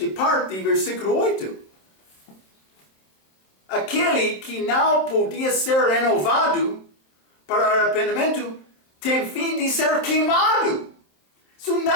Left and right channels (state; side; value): late; right; 27 ms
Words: parte de versículo 8? Aquele que não podia ser renovado para arrependimento tem fim de ser queimado. Isso